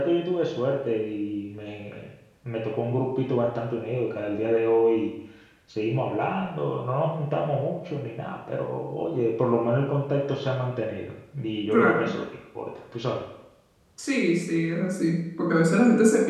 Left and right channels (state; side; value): identical; both; correlation 1.00